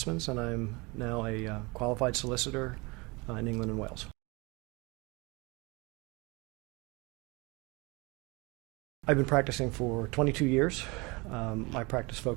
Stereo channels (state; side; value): quieter; left; 26.3 dB